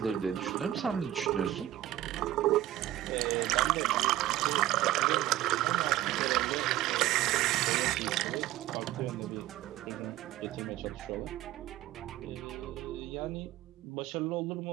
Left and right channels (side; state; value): left; quieter; 13.8 dB